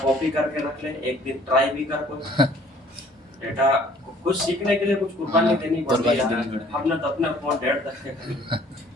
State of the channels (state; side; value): normal; both; correlation 0.56